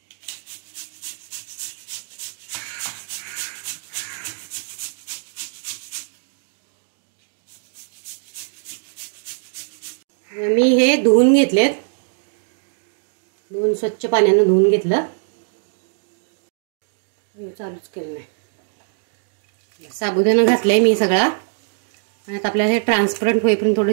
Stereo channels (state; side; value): silent; left; digital silence